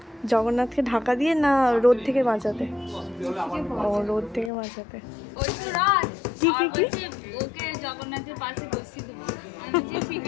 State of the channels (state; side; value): drops out; right; at 4.5 s